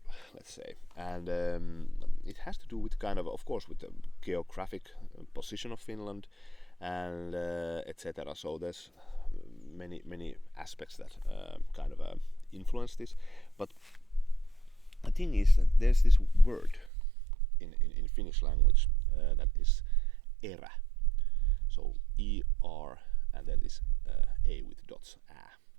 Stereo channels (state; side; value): drops out; left; at 16.9 s